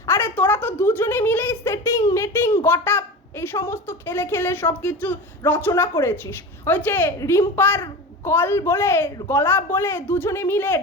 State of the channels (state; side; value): normal; both; correlation 0.29